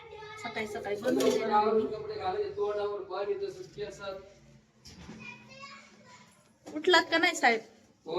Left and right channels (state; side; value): identical; both; correlation 1.00